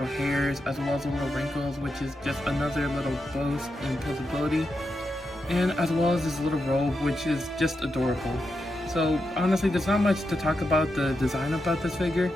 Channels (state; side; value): normal; both; correlation 0.86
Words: hairs, as well as the little wrinkles, which is just another little boost in visibility. And as well as this little robe, which is just adorable. So honestly, there's not much to talk about the design about this figure,